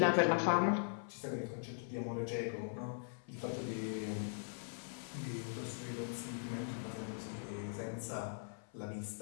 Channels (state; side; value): silent; right; 51 dB below the other